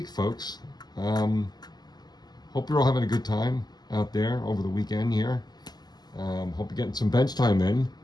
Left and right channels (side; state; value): right; late; 0.20 ms